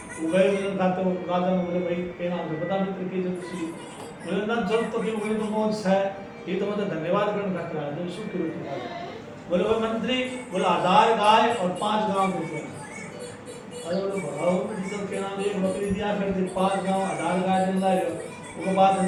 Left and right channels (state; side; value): identical; both; correlation 1.00